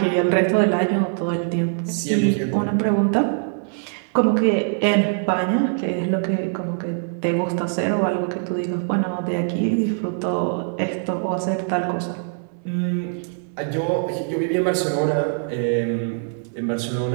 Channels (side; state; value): left; silent; 64 dB below the other